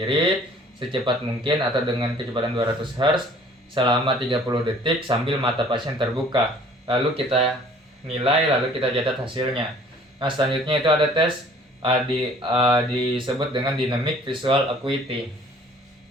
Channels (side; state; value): both; normal; correlation 0.53